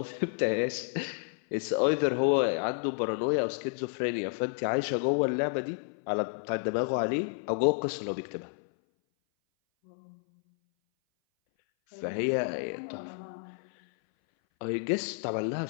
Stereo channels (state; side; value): silent; right; 58 dB below the other